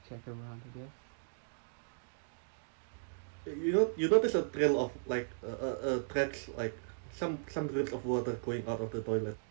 check around, I guess. You notice a trail of like tracks, like some drips of water going out of the toilet.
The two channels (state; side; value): silent; left; digital silence